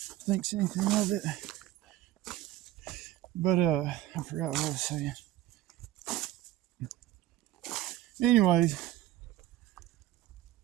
anything of it. But I forgot what I was saying. Anyways,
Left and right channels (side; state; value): left; quieter; 14.6 dB